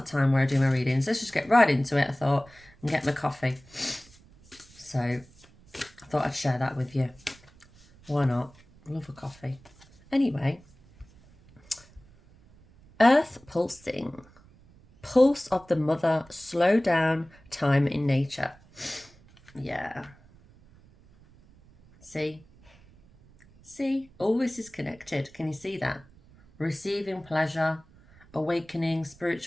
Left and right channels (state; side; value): noise; right; rumble, 26 dB below the sound